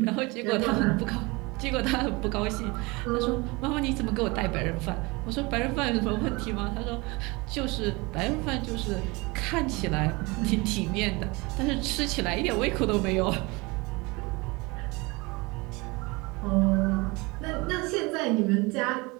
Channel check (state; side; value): quieter; left; 25.2 dB